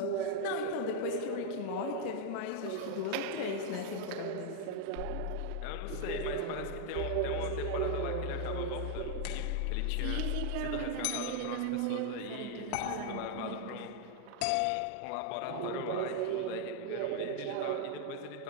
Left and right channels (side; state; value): both; different; correlation 0.00